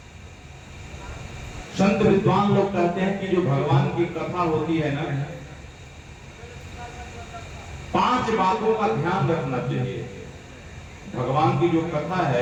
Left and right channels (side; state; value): both; identical; correlation 1.00